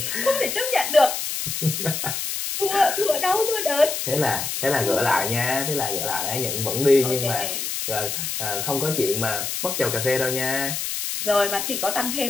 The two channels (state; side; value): noise; left; hiss, 3 dB below the sound